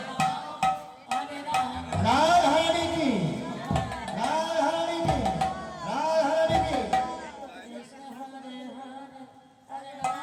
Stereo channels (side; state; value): both; identical; correlation 1.00